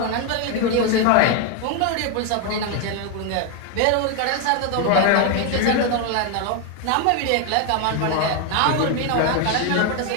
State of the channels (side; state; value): both; different; correlation 0.01